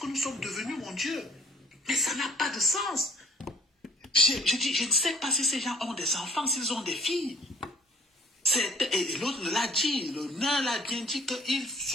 nous sommes devenus, mon Dieu? Mais ça n'a pas de sens. Je dis, je ne sais pas si ces gens ont des enfants, s'ils ont des filles. Et l'autre l'a dit, le nain l'a bien dit qu'il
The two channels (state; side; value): normal; both; correlation 0.58